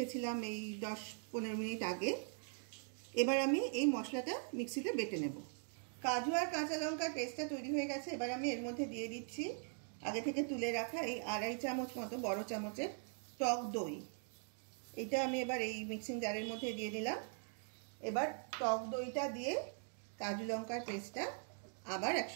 এই 10-15 মিনিট আগে। এবার আমি এই মশলাটা মিক্সিতে বেটে নেব। কাজু আর কাঁচা লঙ্কার পেস্টটা তৈরি হয়ে গেছে। এবার আমি এর মধ্যে দিয়ে দিচ্ছি আগে থেকে তুলে রাখা এই 2.5 চামচ মতো বড় চামচের টক দই। এটা আমি এবার এই মিক্সিং জারের মধ্যে দিয়ে দিলাম। এবার টক দইটা দিয়ে কাজু লঙ্কার পেস্টটা আবার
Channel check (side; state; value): left; silent; 50 dB below the other